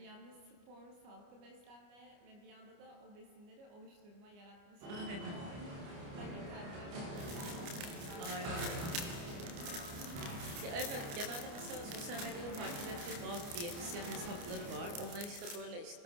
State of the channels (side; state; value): left; late; 29 ms